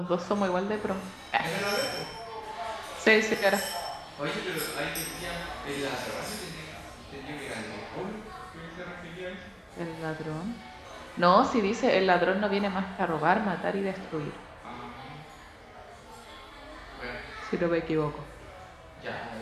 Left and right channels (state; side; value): identical; both; correlation 1.00